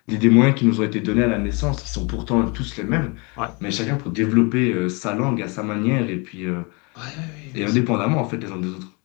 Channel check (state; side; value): quieter; right; 30.3 dB